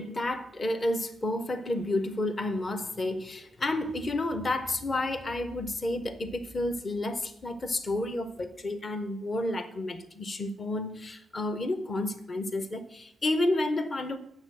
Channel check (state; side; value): normal; both; correlation 0.83